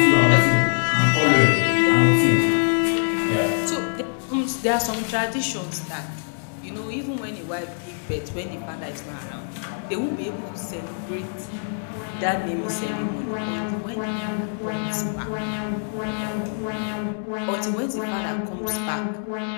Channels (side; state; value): right; silent; 63 dB below the other